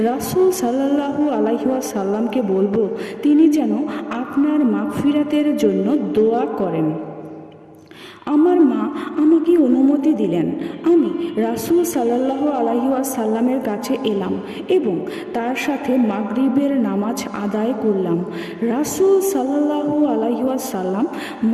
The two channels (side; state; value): both; identical; correlation 1.00